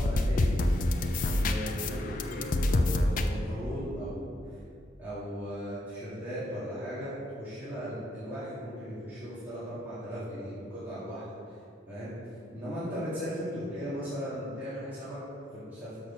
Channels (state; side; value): normal; both; correlation 0.78